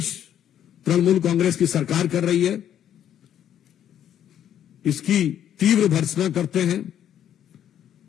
तृणमूल कांग्रेस की सरकार कर रही है, इसकी तीव्र भर्त्सना करते हैं।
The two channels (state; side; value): quieter; right; 10.2 dB